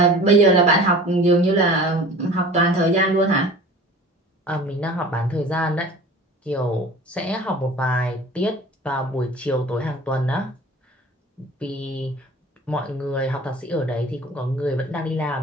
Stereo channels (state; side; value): normal; both; correlation 0.42